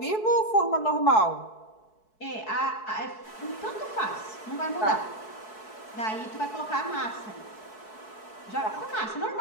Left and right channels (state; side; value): late; right; 4.6 ms